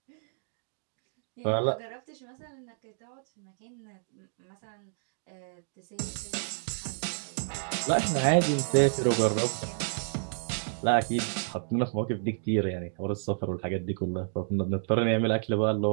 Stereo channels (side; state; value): left; silent; digital silence